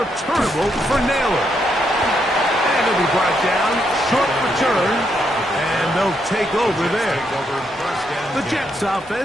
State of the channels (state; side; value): normal; both; correlation 0.78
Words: for Naylor. And he'll be brought down. Short return. And they'll take over there. The Jets